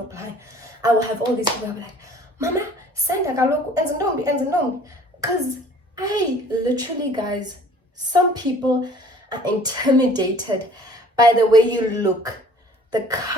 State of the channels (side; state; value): both; normal; correlation 0.52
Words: apply, I will have all these people. I'll be like, Mama, send a galoku, enzinombi. Because I literally, guys, some people are intimidated by the way you look, the